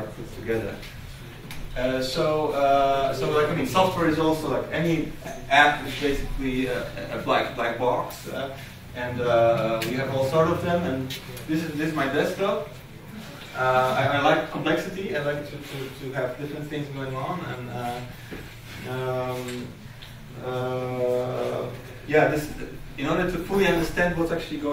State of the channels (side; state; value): both; identical; correlation 1.00